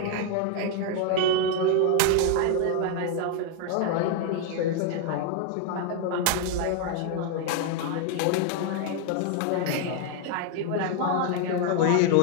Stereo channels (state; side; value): different; both; correlation 0.00